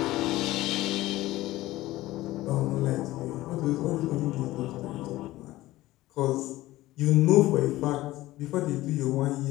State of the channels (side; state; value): right; quieter; 17.1 dB